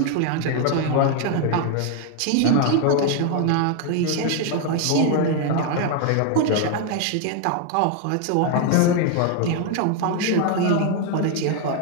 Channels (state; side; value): different; both; correlation 0.01